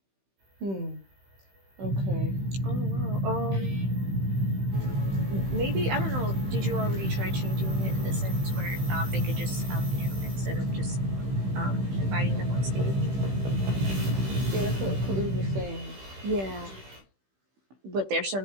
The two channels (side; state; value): left; late; 15 ms